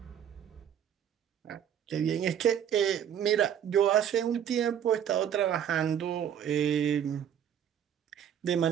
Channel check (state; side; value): quieter; left; 9.2 dB